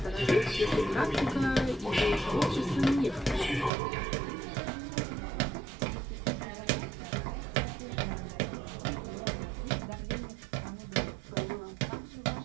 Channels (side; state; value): left; drops out; at 3.7 s